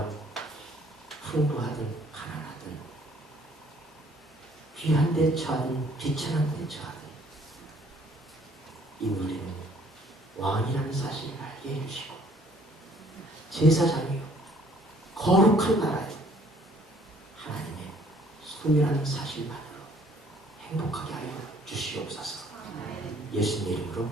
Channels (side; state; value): both; normal; correlation 0.60